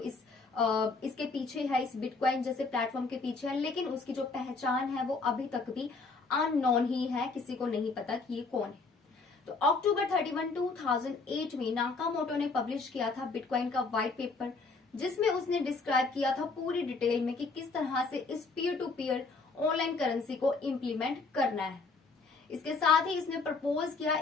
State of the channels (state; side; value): quieter; right; 4.1 dB